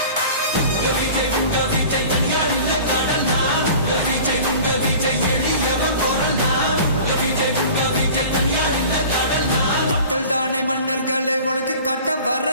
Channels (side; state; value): both; inverted; correlation -0.42